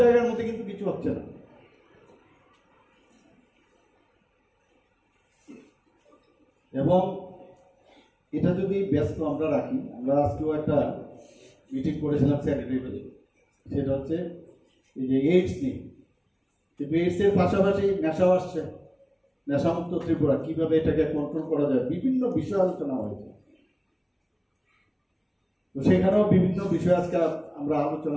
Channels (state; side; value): identical; both; correlation 1.00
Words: মধ্যে কিন্তু কিছু হচ্ছে না। এবং এটা যদি ব্যস্ত আমরা রাখি, আমরা আজকেও একটা মিটিং করেছিলাম স্যানিটারি, সেটা হচ্ছে এই যে এইডস নিয়ে, কিন্তু এইডস এর পাশাপাশি নেশাও আসছে, নেশামুক্ত ত্রিপুরা কিভাবে এটাকে কন্ট্রোল করা যায়, বিভিন্ন বিষয় আলোচনা হয়েছে। তো সেখানেও বিভিন্ন বিষয় আজকে আমরা